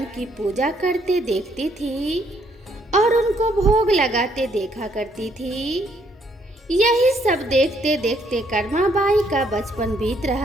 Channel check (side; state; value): both; normal; correlation 0.69